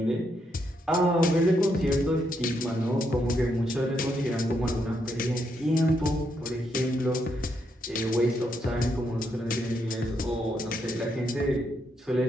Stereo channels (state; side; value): normal; both; correlation 0.78